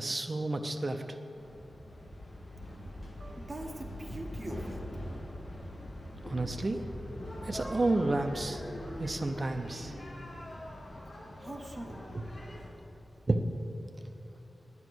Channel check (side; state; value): both; normal; correlation 0.96